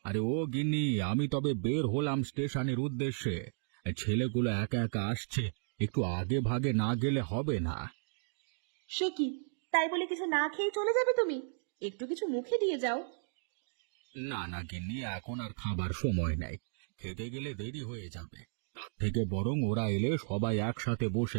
আরে ও গিন্নি, আমি তবে বের হলাম স্টেশনের উদ্দেশ্যে। ছেলেগুলো একা একা আসছে, একটু আগে ভাগে না গেলে হবে না। সে কি, তাই বলে কিছু না খেয়ে চলে যাবে তুমি? একটু কিছু মুখে দিয়ে যাও। না না গিন্নি, এখন আর খাবার সময় নেই, খেতে গেলে দেরি হয়ে যাবে। তার থেকে বরং ওরা এলে সবাই একসাথে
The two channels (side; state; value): left; silent; digital silence